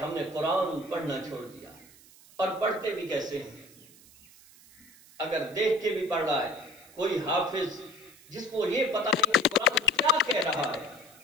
نے قرآن پڑھنا چھوڑ دیا، اور پڑھتے بھی کیسے ہیں؟ اگر دیکھ کے بھی پڑھ رہا ہے کوئی حافظ جس کو یہ پتہ نہیں کہ قرآن کیا کہہ رہا ہے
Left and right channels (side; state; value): right; noise; hiss, 24 dB below the sound